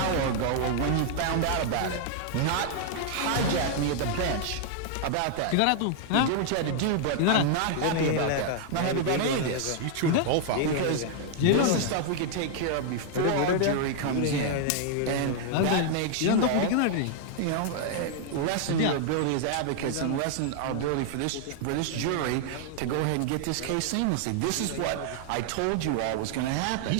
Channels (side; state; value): both; different; correlation 0.00